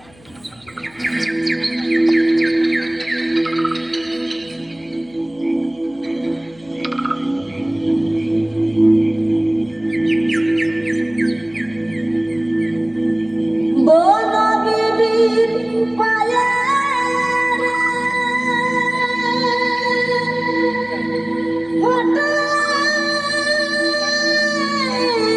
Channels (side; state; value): left; noise; hum, 27 dB below the sound